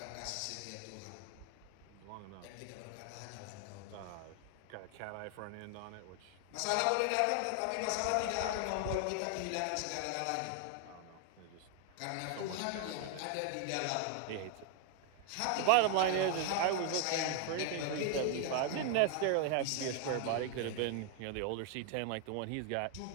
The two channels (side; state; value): both; different; correlation 0.00